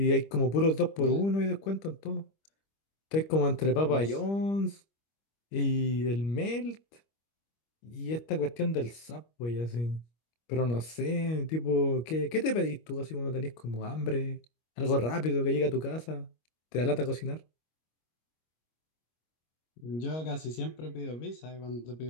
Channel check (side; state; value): right; late; 25 ms